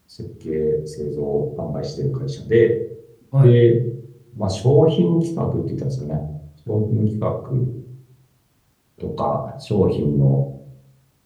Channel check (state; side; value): identical; both; correlation 1.00